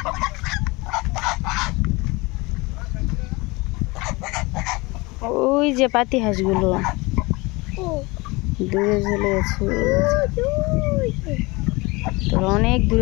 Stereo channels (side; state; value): right; quieter; 24.2 dB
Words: ওই যে পাতি হাঁসগুলো দূরে চলে গেছে, তোরা অনেক